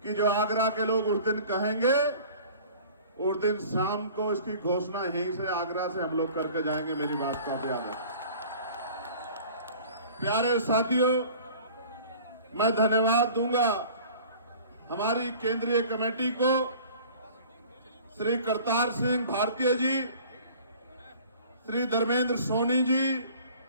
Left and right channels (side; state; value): both; inverted; correlation -0.46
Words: कि जो आगरा के लोग उस दिन कहेंगे, उस दिन शाम को इसकी घोषणा यहीं से आगरा से हम लोग करके जाएंगे। मेरी बात को आप याद रखें। प्यारे साथियों, मैं धन्यवाद दूंगा हमारी केंद्रीय कमेटी को, श्री करतार सिंह भारतीय जी, श्री धर्मेंद्र सोनी जी,